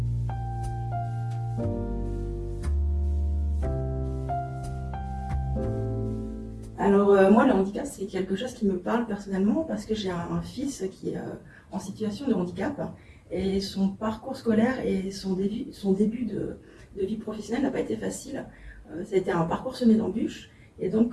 Alors moi, le handicap, c'est quelque chose qui me parle personnellement parce que j'ai un fils qui est en situation de handicap et son parcours scolaire et son début de vie professionnelle n'a pas été facile. Ça a été un parcours semé d'embûches et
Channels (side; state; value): both; identical; correlation 1.00